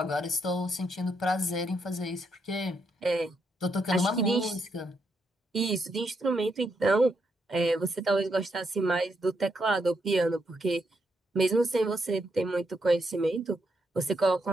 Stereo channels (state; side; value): normal; both; correlation 0.79